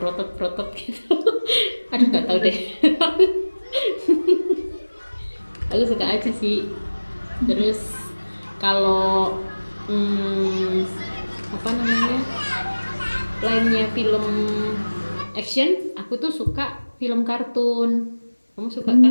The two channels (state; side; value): inverted; both; correlation -1.00